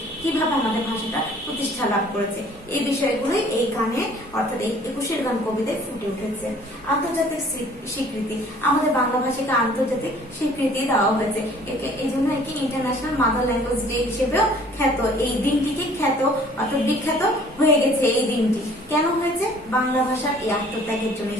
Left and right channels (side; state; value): both; normal; correlation 0.54